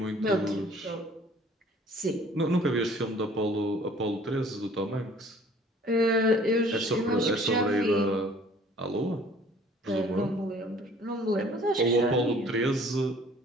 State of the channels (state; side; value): normal; both; correlation 0.53